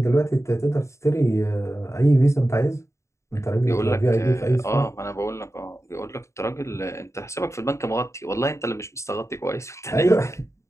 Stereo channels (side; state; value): right; late; 0.14 ms